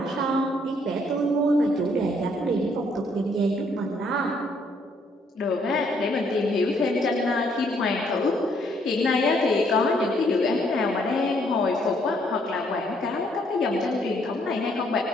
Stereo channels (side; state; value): both; normal; correlation 0.68